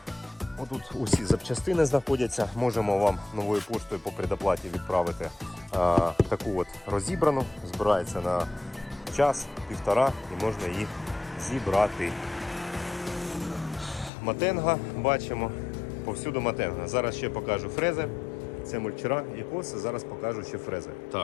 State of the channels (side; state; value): right; drops out; at 14.1 s